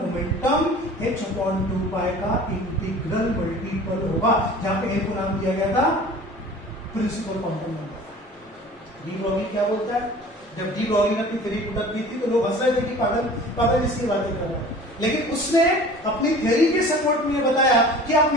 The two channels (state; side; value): normal; both; correlation 0.43